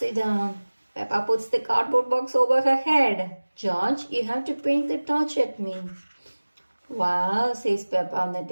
down. Peppa puts the cardboard box over her head. George, you have to point the torch at me. Wow, says Peppa, on the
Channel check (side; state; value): both; inverted; correlation -1.00